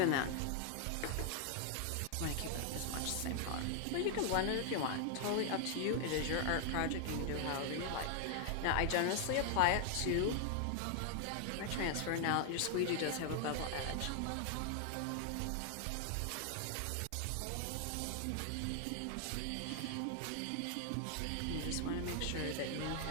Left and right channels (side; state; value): both; different; correlation 0.00